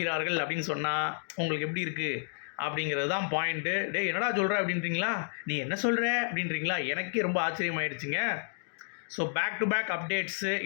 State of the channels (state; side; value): silent; right; 55 dB below the other